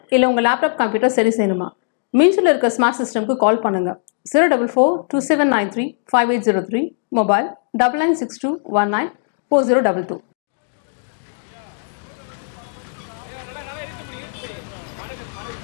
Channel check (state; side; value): silent; right; digital silence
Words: இல்லை உங்கள் லேப்டாப் கம்ப்யூட்டர் சரி செய்யணுமா? மீன்ஸில் இருக்க ஸ்மார்ட் சிஸ்டம்க்கு கால் பண்ணுங்கள். 04427935803, மொபைல் 9962194022.